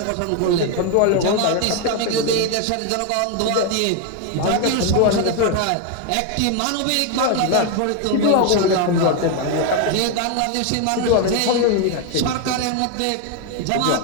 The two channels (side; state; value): both; different; correlation 0.01